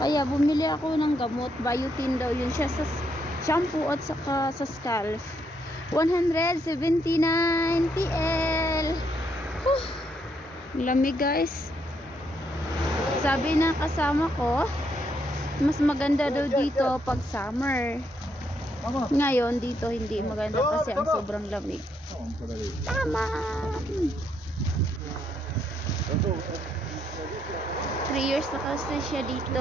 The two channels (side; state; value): both; normal; correlation 0.75